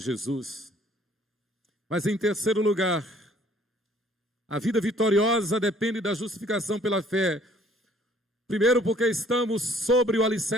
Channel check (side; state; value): both; normal; correlation 0.58